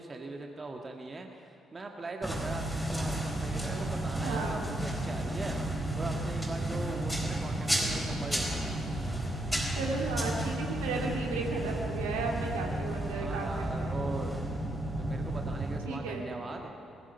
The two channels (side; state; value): both; normal; correlation 0.78